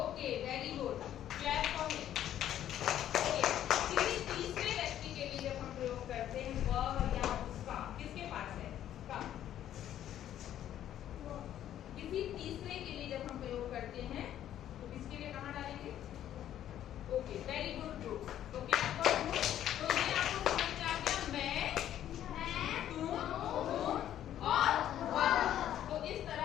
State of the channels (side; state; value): right; quieter; 11.4 dB